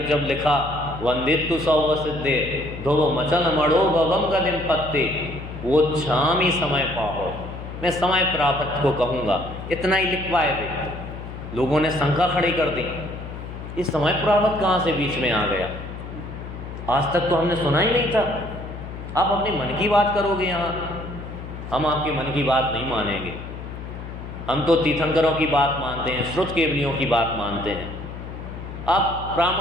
जब लिखा, वंदित्तु सौव सिद्धे ध्रुव मचन मड़ो भवम गदिम पत्ते, वो छाम ही समय पाओ, मैं समय प्राप्त को कहूँगा। इतना ही लिख पाए वे। लोगों ने शंका खड़ी कर दी, इस समय प्राप्त कहाँ से बीच में आ गया? आज तक तो हमने सुना ही नहीं था। आप अपने मन की बात करोगे यहाँ, हम आपके मन की बात नहीं मानेंगे। हम तो तीर्थंकरों की बात मानते हैं, श्रुत केवलियों की बात मानते हैं। आप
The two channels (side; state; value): left; noise; hum, 10 dB below the sound